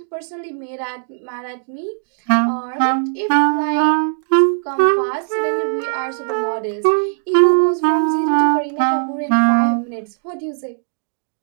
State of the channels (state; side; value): silent; left; digital silence